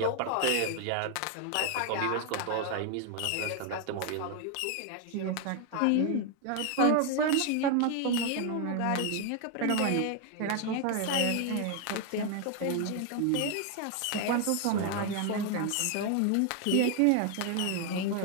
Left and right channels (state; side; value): different; both; correlation 0.01